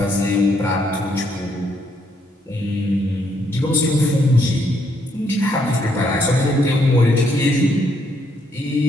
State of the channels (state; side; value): normal; both; correlation 0.73